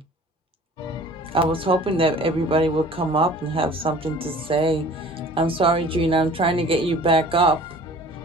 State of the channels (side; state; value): both; normal; correlation 0.47